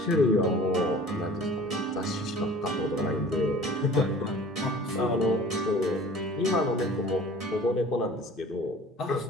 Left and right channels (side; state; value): both; normal; correlation 0.45